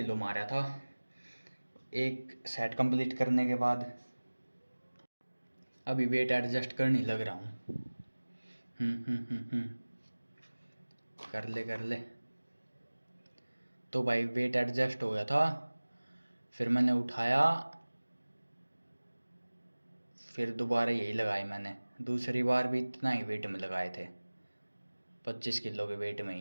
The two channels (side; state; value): both; inverted; correlation -1.00